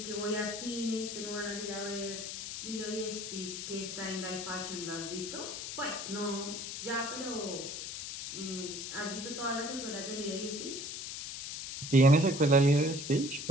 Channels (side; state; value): left; noise; hiss, 6 dB below the sound